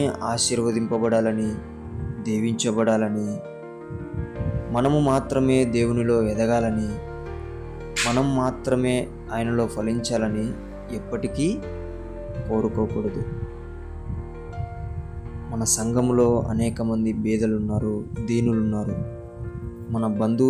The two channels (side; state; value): both; identical; correlation 1.00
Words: ఆశీర్వదింపబడాలని, దీవించబడాలని, మనము మాత్రమే దేవునిలో ఎదగాలని, మనం మాత్రమే ఆయనలో ఫలించాలని ఎప్పటికీ కోరుకోకూడదు. మన సంఘములో అనేక మంది బీదలున్నారు, దీనులున్నారు. మన